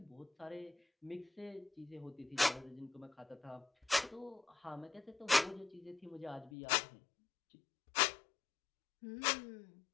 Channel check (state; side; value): drops out; right; at 6.5 s